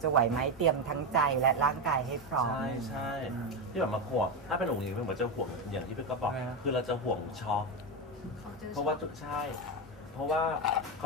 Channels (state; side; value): normal; both; correlation 0.11